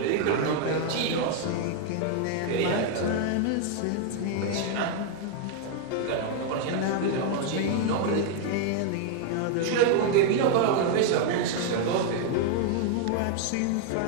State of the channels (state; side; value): different; both; correlation 0.00